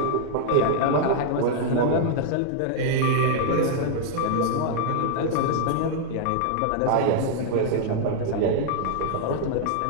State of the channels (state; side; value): different; both; correlation -0.01